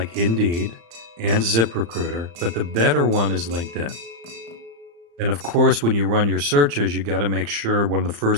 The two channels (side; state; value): left; late; 35 ms